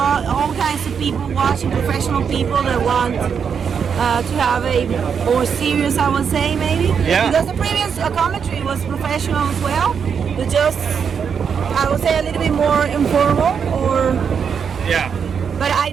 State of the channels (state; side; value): quieter; left; 6.8 dB